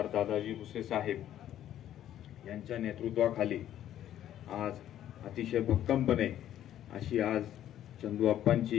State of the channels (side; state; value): right; quieter; 11.6 dB